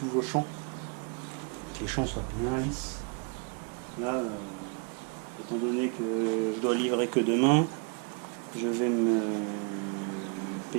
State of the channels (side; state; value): left; quieter; 35.9 dB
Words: vos champs, que les champs soient bien lisses. Là, étant donné que je dois livrer que demain, je vais me